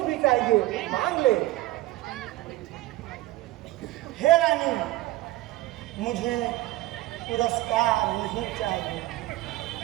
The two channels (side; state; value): left; quieter; 17.3 dB